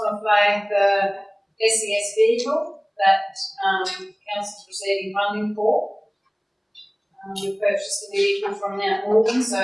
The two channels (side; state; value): both; identical; correlation 1.00